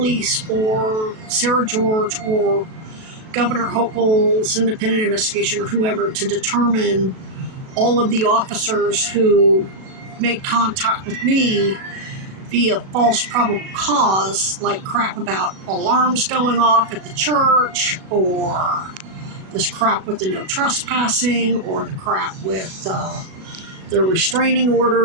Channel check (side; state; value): left; late; 37 ms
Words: or Sarah George or Governor Hochul's independent investigation or whoever to determine all of the officers who made contact with me via false probable cause, like crap about alarms going off at the church, or this crap with the no trespassing, or the crap with the restraining